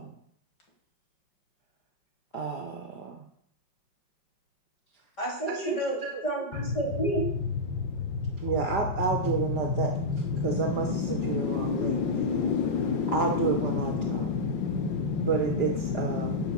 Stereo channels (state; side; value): late; right; 4.9 ms